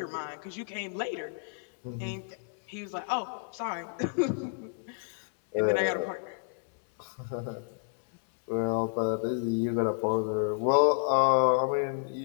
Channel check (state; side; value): silent; right; 58 dB below the other